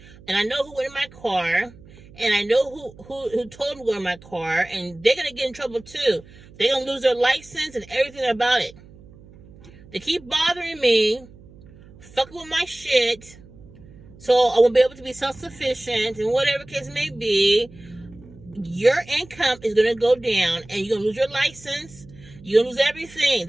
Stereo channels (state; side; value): noise; right; hum, 22 dB below the sound